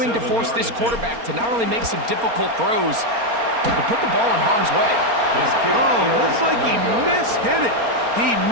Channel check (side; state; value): left; late; 4.3 ms